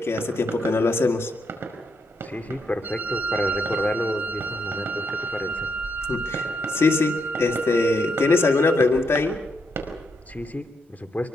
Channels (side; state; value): both; normal; correlation 0.78